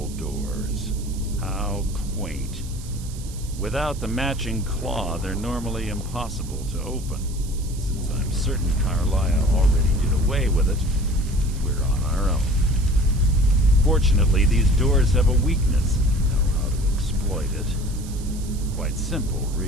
doors. How quaint. Without the matching claw, they're normally impossible to open. Since I'm certain Carlia already did away with it, we're on our own. Fortunately, these doors have a weakness, and we know how to exploit it. Quite simple,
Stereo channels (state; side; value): noise; right; hiss, 17 dB below the sound